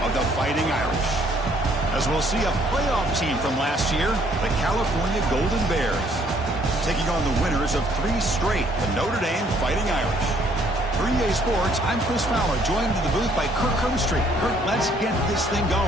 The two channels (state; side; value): normal; both; correlation 0.64